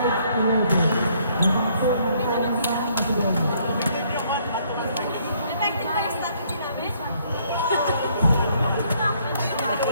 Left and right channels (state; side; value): inverted; both; correlation -0.66